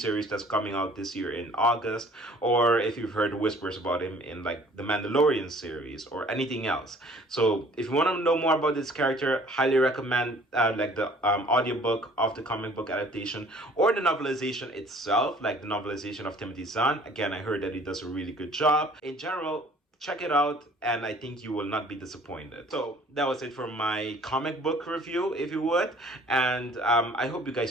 that's coming out this year in August, or if you've heard whispers about him in like the Mandalorian series or anything else. So if you want to know more about this character, highly recommend like the audiobook of the comic book adaptation or the novelization itself, like the novelization of Timothy Zahn. Again, I heard that he does a really good job. In general, check it out, and I think you will not be disappointed. So that was it for my comic book review, if you would, and I hope you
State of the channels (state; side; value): normal; both; correlation 0.54